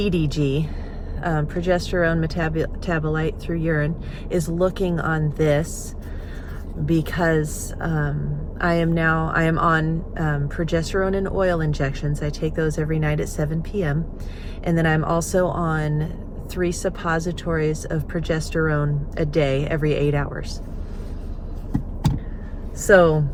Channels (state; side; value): identical; both; correlation 1.00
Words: progesterone metabolite through urine, is looking on this, because I am on progesterone and oil injections. I take those every night at 7 p.m. And then I'm also on 3 suppositories of progesterone a day every 8 hours. So